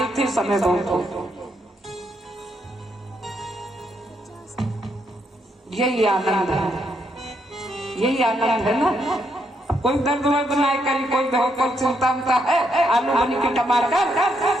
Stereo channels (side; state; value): both; normal; correlation 0.77